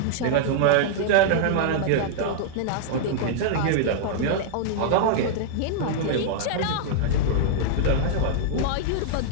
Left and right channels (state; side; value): different; both; correlation -0.01